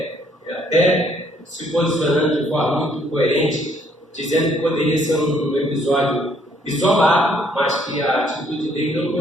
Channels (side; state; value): both; normal; correlation 0.66